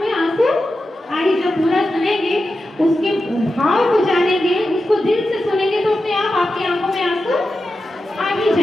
आंसू आई, जब पूरा सुनेंगे, उसके भाव को जानेंगे, उसको दिल से सुनेंगे, तो अपने आप आपकी आंखों में आंसू आ ही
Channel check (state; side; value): normal; both; correlation 0.91